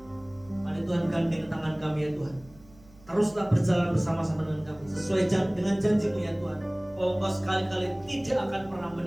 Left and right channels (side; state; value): right; noise; hum, 25 dB below the sound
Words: Mari Tuhan gandeng tangan kami ya Tuhan. Teruslah berjalan bersama-sama dengan kami sesuai dengan janji-Mu ya Tuhan, bahwa Engkau sekali-kali tidak akan pernah